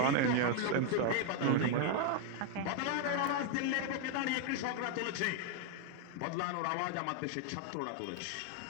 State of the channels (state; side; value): different; both; correlation 0.00